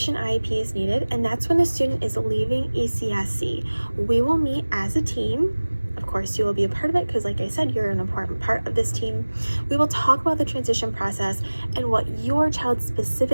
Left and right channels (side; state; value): both; inverted; correlation -1.00